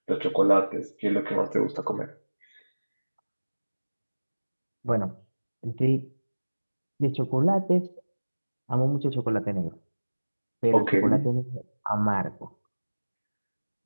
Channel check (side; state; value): both; inverted; correlation -1.00